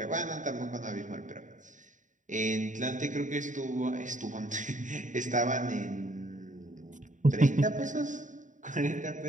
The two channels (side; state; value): left; late; 0.36 ms